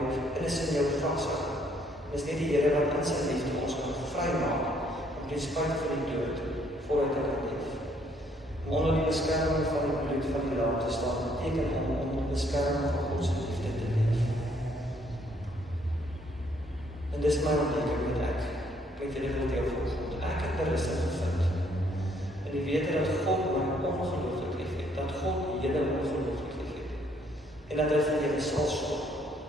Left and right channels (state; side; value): normal; both; correlation 0.67